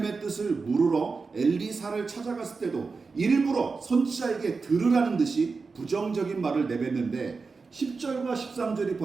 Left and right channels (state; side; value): quieter; left; 4.5 dB